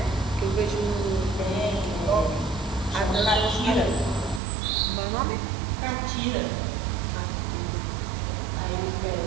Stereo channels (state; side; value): drops out; left; at 4.4 s